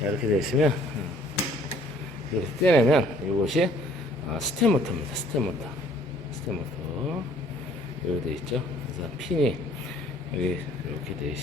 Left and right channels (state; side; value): normal; both; correlation 0.58